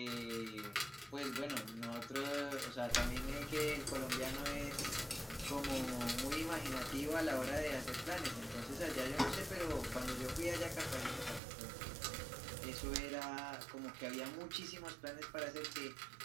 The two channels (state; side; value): drops out; left; at 11.4 s